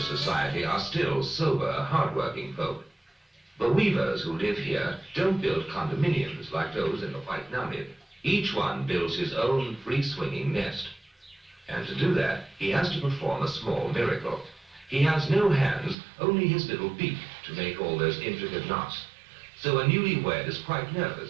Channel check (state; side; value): drops out; left; at 16.0 s